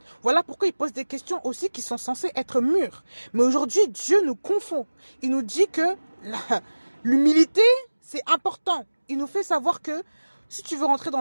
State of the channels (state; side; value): inverted; both; correlation -1.00